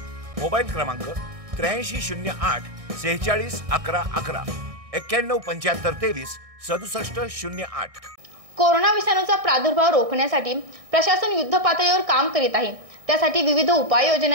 Mobile क्रमांक 8308 46 11 11 91 75 23 67 08। कोरोना विषाणूचा प्रादुर्भाव रोखण्यासाठी प्रशासन युद्धपातळीवर काम करीत आहे। त्यासाठी विविध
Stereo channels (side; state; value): left; late; 1.6 ms